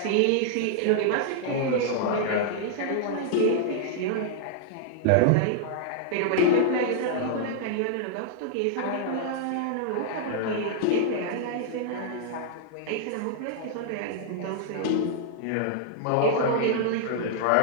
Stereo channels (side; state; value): both; different; correlation -0.01